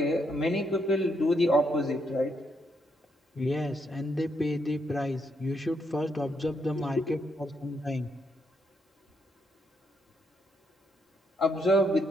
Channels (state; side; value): normal; both; correlation 0.77